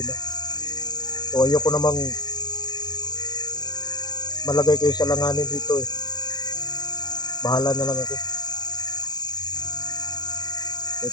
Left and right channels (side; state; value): right; late; 0.20 ms